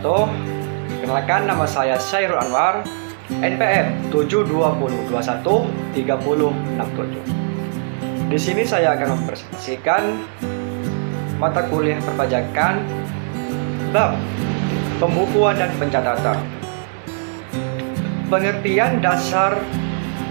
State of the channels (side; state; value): left; silent; 66 dB below the other